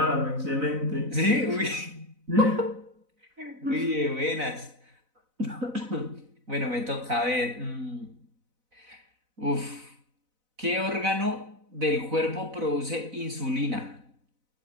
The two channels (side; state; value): left; late; 4.0 ms